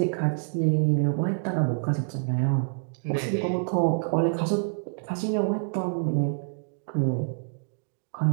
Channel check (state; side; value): silent; left; digital silence